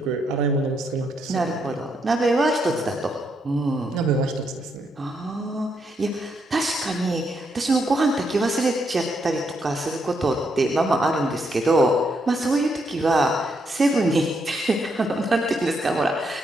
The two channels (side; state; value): both; normal; correlation 0.78